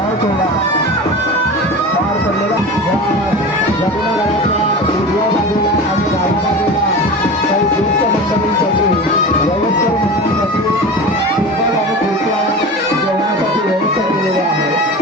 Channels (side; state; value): both; normal; correlation 0.31